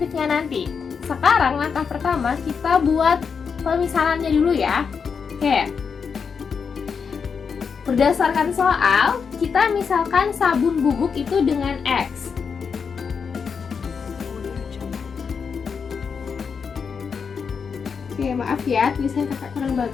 nanti. Sekarang langkah pertama kita buat pemisalannya dulu ya. Oke. Berdasarkan soal, kita misalkan sabun bubuk itu dengan X. Audio Jungle. Oke, maaf ya, tulisan kakak kurang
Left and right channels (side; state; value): right; quieter; 6.0 dB